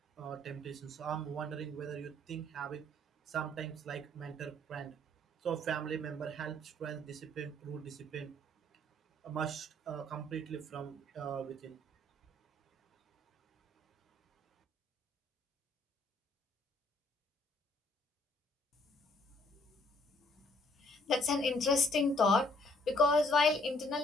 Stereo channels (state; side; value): normal; both; correlation 0.63